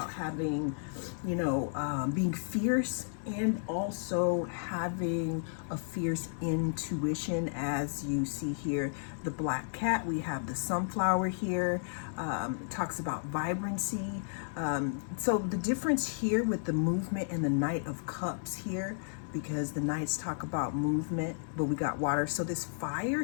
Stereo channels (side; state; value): right; silent; 56 dB below the other